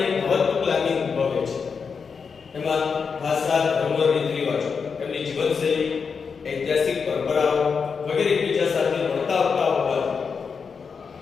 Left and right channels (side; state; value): right; quieter; 5.7 dB